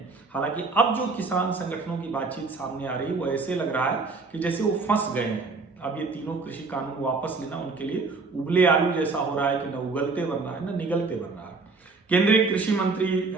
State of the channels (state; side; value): quieter; left; 4.1 dB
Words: हालांकि अब जो किसान संगठनों की बातचीत सामने आ रही है, वो ऐसे लग रहा है कि जैसे वो फंस गए हैं। अब ये तीनों कृषि कानून वापस लेना उनके लिए उबले आलू जैसा हो रहा है कि न उगलते बन रहा है न निगलते बन रहा है। केंद्रीय कृषि मंत्री